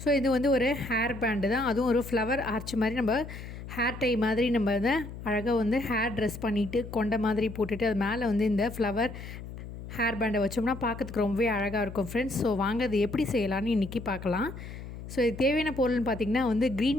ஸோ இது வந்து ஒரு ஹேர் பேண்டு தான், அதுவும் ஒரு ஃப்ளவர் ஆர்ச் மாதிரி நம்ம ஹேர் டை மாதிரி நம்ம அதை அழகாக வந்து ஹேர் ட்ரெஸ் பண்ணிவிட்டு கொண்ட மாதிரி போட்டுட்டு அது மேலே வந்து இந்த ஃப்ளவர் ஹேர் பேண்டை வச்சோம்னா பார்க்கறதுக்கு ரொம்பவே அழகாக இருக்கும் ஃப்ரெண்ட்ஸ். ஸோ வாங்க அது எப்படி செய்யலான்னு இன்றைக்கி பார்க்கலாம். ஸோ இது தேவையான பொருள்னு பார்த்திங்கன்னா வந்து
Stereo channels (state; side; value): noise; left; hum, 11 dB below the sound